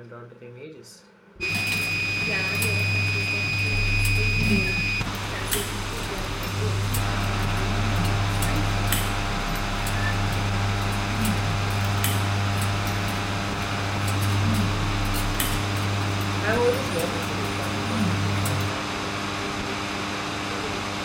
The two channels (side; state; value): both; identical; correlation 1.00